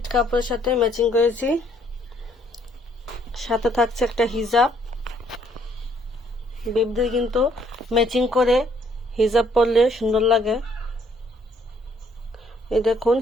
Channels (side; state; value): both; normal; correlation 0.66